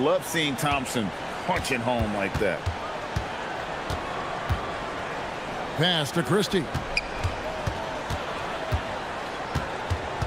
seeing Thompson punching home like that. Pass to Christie.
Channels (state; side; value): identical; both; correlation 1.00